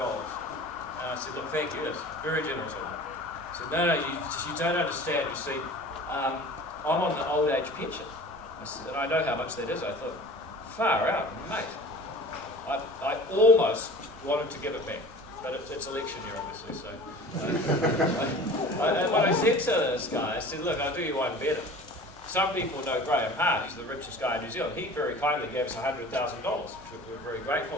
I said, look, thank you, that's very generous of you. I said, no, you don't understand. You see, I'm on the old age pension. I said, and I know how much that is. I thought, far out, mate. I almost wanted to give it back, but it's election year, obviously, so. And what I said to this guy, I said, look, I'll do you one better. Some people know Graham Hart, he's the richest guy in New Zealand. He very kindly gave us $100,000, which we're very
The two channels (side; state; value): both; normal; correlation 0.42